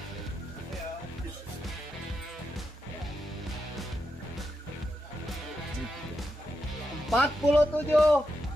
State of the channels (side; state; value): both; normal; correlation 0.85